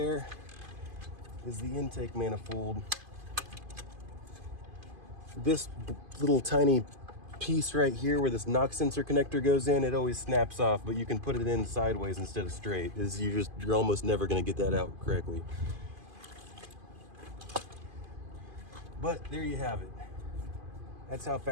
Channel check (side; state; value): left; late; 2.5 ms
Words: is the intake manifold. This little tiny piece right here where this knock sensor connector goes in, it always snaps off, but you can put it in sideways instead of straight. You're almost never gonna get that out correctly. But there you have it. That's how